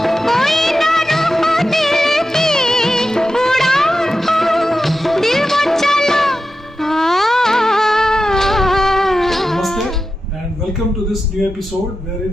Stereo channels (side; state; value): both; normal; correlation 0.91